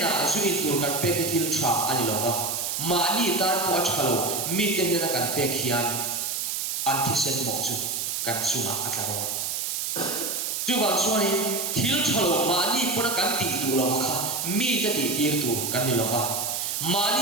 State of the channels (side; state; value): right; noise; hiss, 1 dB below the sound